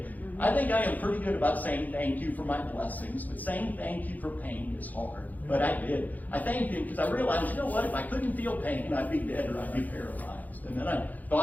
I think I am pretty good about saying thank you for my blessings, but saying thank you for pain is hard. But I did. I thanked him because I realized, you know what, if I couldn't feel pain, I'd be dead or I'd be paralyzed. And then I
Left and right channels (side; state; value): right; late; 0.081 ms